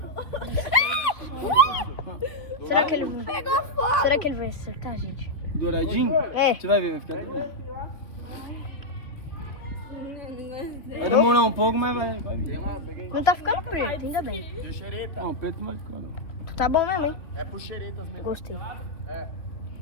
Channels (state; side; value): late; right; 2.8 ms